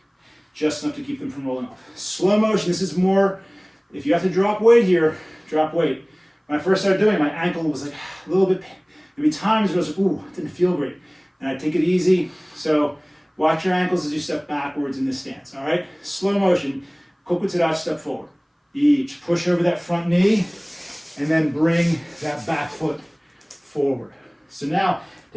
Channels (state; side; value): identical; both; correlation 1.00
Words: just enough to keep them from rolling off. Slow motion, this is more, if you have to drop weight here, drop weight. When I first started doing it, my ankle was like a little bit, there'd be times where I was like, ooh, it didn't feel great. And I take it easy. So watch your ankles as you step backwards in this stance, all right? Slow motion, kokutsudachi, step forward. Each, push over that front knee, and then bring that back foot forward. So now,